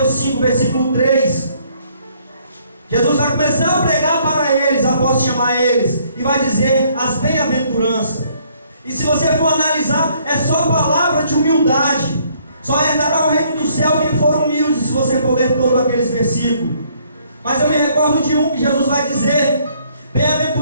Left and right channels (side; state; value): both; inverted; correlation -0.65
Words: 5, versículo 3. Jesus vai começar a pregar para eles, após chamar eles, e vai dizer as bem-aventuranças. E se você for analisar, é só palavra de humildade. Só herdará o reino do céu quem for humilde, se você for ler todos aqueles versículos. Mas eu me recordo de um que Jesus vai dizer: